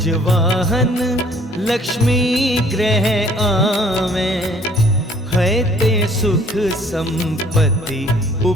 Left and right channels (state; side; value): normal; both; correlation 0.58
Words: लक्ष्मी ग्रह आवे, है ते सुख संपत्ति